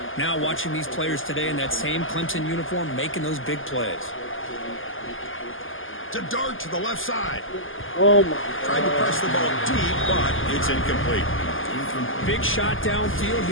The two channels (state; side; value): late; right; 0.58 ms